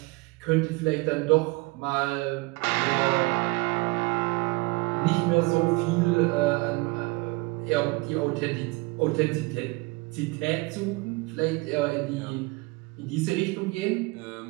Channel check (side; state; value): left; quieter; 25.7 dB